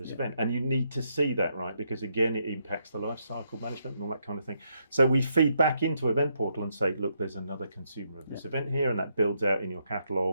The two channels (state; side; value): inverted; both; correlation -0.77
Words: event, and you need to see that, right? Because again, it impacts the life cycle management and all that kind of thing. So we feed back into event portal and say, look, there's another consumer of this event here, and that builds out in your